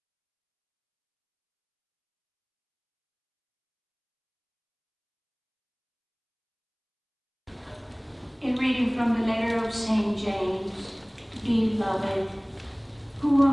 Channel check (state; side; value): identical; both; correlation 1.00